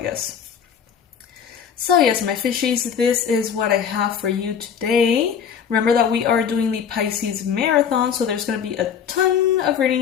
So yes, my fishies, this is what I have for you today. Remember that we are doing the Pisces Marathon, so there's going to be a ton of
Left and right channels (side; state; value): right; quieter; 7.6 dB